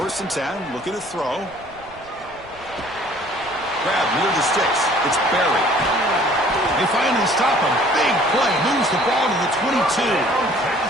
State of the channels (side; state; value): right; noise; rumble, 24 dB below the sound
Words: and 10, looking to throw. Grab near the sticks. It's Barry. They finally stop him. Big play. Moves the ball to the 22.